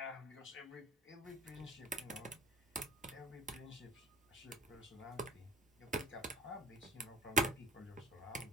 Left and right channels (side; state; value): both; normal; correlation 0.43